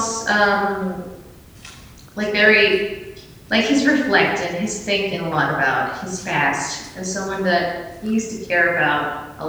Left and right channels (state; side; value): identical; both; correlation 1.00